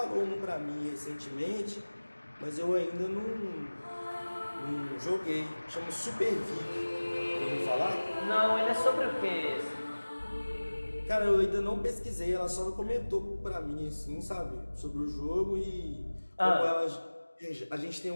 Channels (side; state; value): both; inverted; correlation -1.00